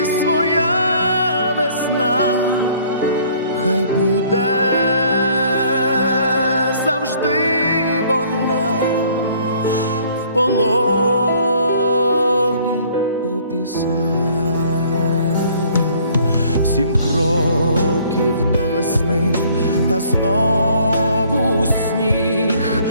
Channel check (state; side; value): inverted; both; correlation -0.58